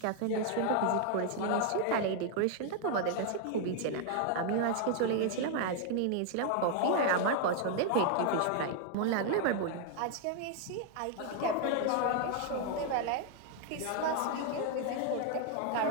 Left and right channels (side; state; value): both; different; correlation 0.00